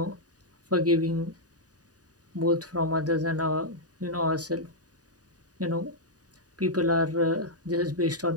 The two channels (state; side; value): late; left; 0.68 ms